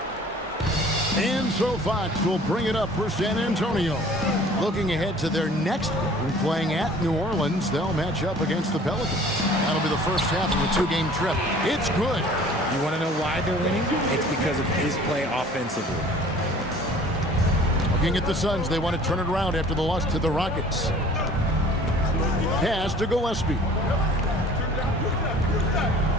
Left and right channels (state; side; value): normal; both; correlation 0.50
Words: And so Fox will bring it up for San Antonio. Looking ahead to their next game, playing at New Orleans, they'll match up against the Pelicans. That'll be the first half of a 2-game trip. It's good. You want to know why they're winning? It's because of his play offensively. Looking at the Suns, they want to turn it around after the loss to the Rockets. Pass to Gillespie.